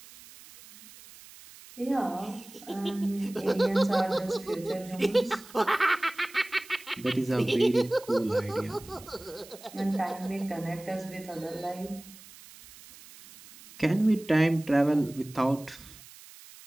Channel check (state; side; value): noise; right; hiss, 20 dB below the sound